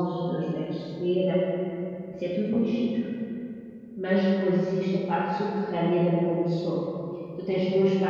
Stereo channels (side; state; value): both; identical; correlation 1.00